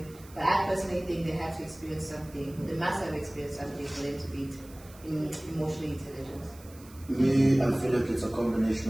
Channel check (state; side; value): noise; right; hiss, 22 dB below the sound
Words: But I personally think they have to experience something. They must have experienced something for them to be emotionally intelligent. Me, I feel like it's a